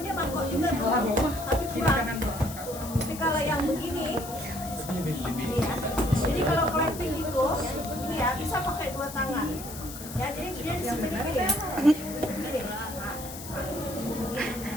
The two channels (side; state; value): left; noise; hiss, 12 dB below the sound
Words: dia mangkok juga tuh, tapi kurang. Tapi kalau yang begini, ini ya. Jadi kalau clapping gitu, ini ya bisa pakai 2 tangan. Ya, jadi dia di sini gini.